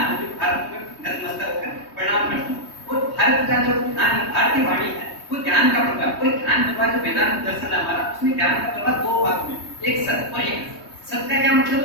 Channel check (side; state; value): right; late; 3.2 ms